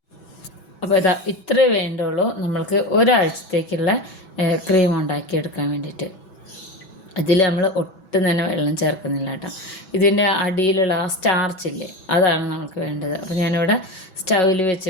അപ്പോൾ ഇതാ ഇത്രേ വേണ്ടുള്ളൂ നമ്മൾക്ക് ഒരാഴ്ചത്തേക്കുള്ള ക്രീം ഉണ്ടാക്കിയെടുക്കാൻ വേണ്ടിയിട്ട്. ഇതിൽ നമ്മൾ ഒട്ടും തന്നെ വെള്ളം ചേർക്കുന്നില്ല കേട്ടോ. ഇതിൻ്റെ അടിയിലുള്ള ആ സ്റ്റാർച്ചില്ലേ, അതാണ് നമുക്ക് വേണ്ടത്. അപ്പോൾ ഞാനിവിടെ സ്റ്റൗവിൽ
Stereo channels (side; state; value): right; late; 6.1 ms